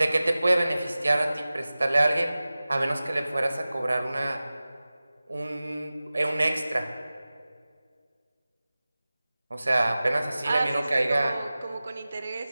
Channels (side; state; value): both; inverted; correlation -0.97